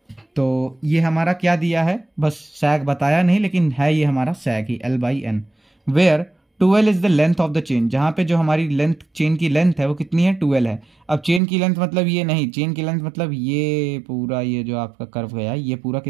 तो ये हमारा क्या दिया है, बस सैग बताया नहीं लेकिन है ये हमारा सैग ही, L by N, where 2L is the length of the chain, जहां पे जो हमारी लेंथ, चेन की लेंथ है वो कितनी है, 2L है। अब चेन की लेंथ मतलब ये नहीं, चेन की लेंथ मतलब ये पूरा, ये जो आपका कर्व गया है ये पूरा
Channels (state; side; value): drops out; left; at 11.4 s